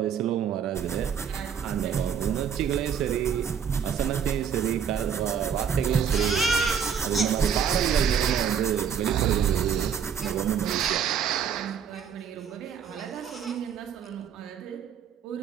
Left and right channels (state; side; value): quieter; left; 7.6 dB